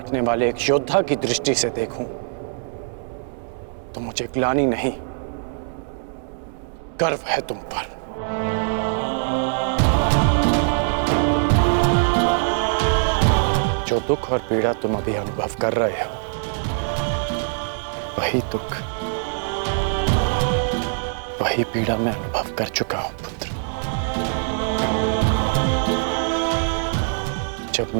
वाले एक योद्धा की दृष्टि से देखूं तो मुझे ग्लानि नहीं, गर्व है तुम पर। जो दुख और पीड़ा तुम अभी अनुभव कर रहे हो, वही दुख, वही पीड़ा मैं अनुभव कर चुका हूं पुत्र। जब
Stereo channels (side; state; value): left; silent; digital silence